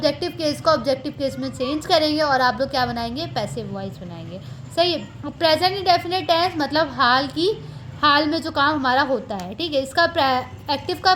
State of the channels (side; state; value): both; identical; correlation 1.00